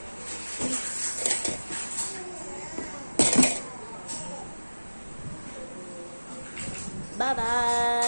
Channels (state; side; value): inverted; both; correlation -1.00